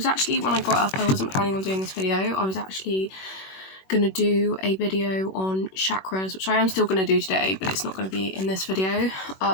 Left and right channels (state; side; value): late; right; 21 ms